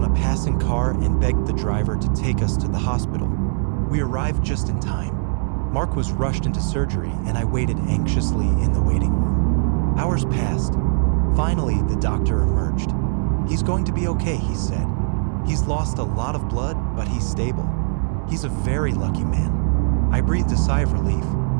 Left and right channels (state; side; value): silent; left; digital silence